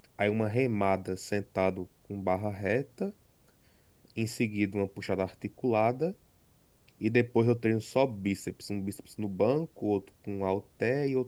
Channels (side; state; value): both; identical; correlation 1.00